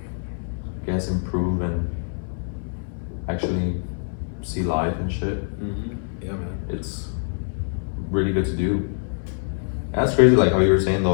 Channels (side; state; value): right; silent; 62 dB below the other